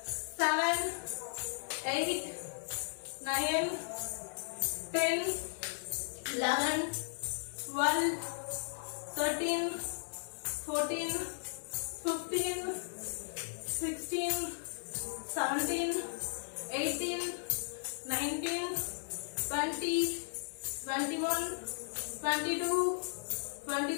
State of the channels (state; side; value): silent; right; digital silence